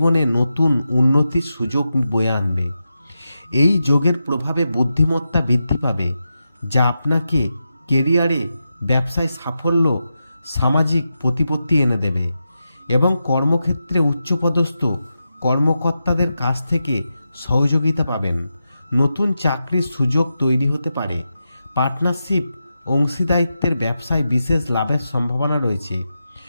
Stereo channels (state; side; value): inverted; both; correlation -0.88